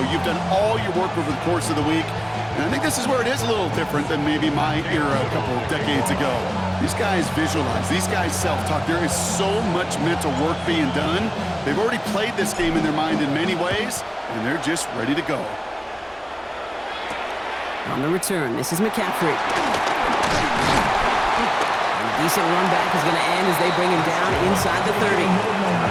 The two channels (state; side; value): identical; both; correlation 1.00